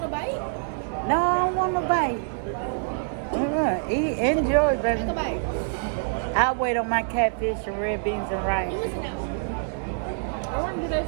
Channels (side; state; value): left; silent; 61 dB below the other